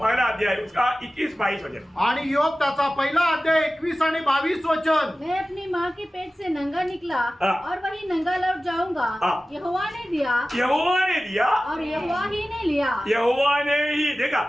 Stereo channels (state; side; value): normal; both; correlation 0.96